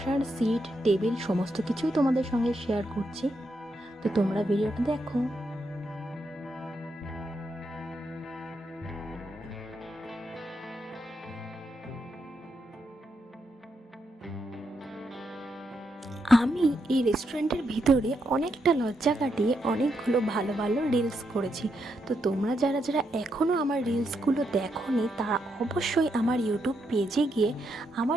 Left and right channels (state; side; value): normal; both; correlation 0.81